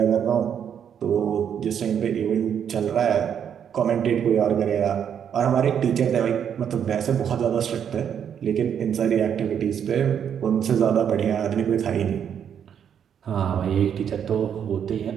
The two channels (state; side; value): quieter; left; 8.4 dB